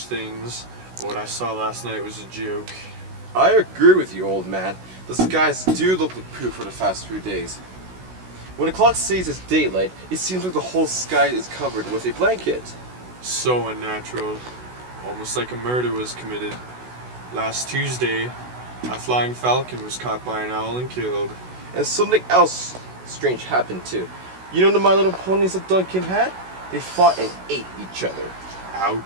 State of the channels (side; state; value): left; late; 16 ms